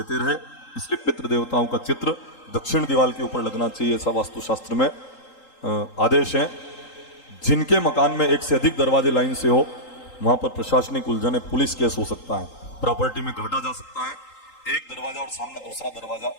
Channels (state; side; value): late; right; 3.8 ms